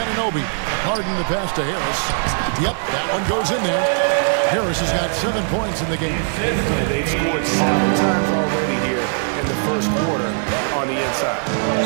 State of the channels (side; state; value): left; silent; digital silence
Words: Harden the pass to Harris. Yep, that one goes in there. Harris has got 7 points in the game. And they've scored 7 times already here in the first quarter on the inside.